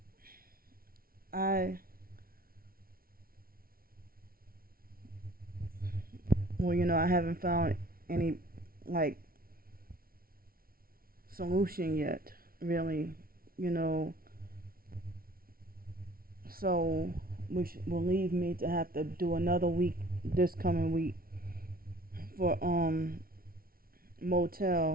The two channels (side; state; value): left; late; 0.43 ms